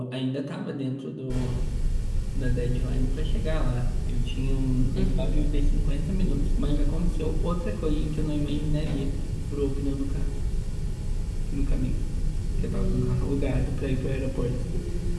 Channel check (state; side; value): identical; both; correlation 1.00